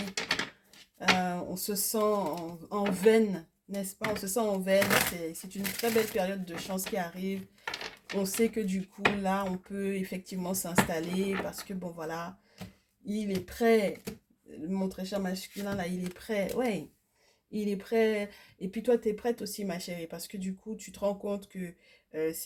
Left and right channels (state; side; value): identical; both; correlation 1.00